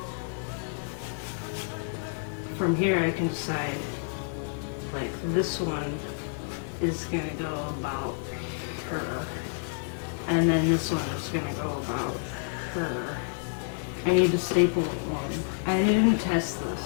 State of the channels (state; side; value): silent; right; digital silence